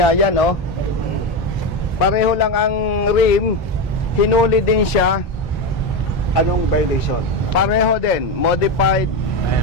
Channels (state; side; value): normal; both; correlation 0.14